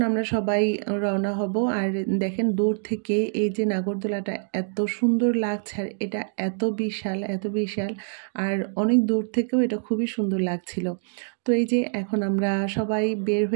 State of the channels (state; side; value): silent; left; 62 dB below the other